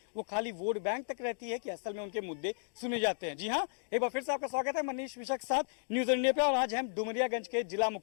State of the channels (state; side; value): silent; right; digital silence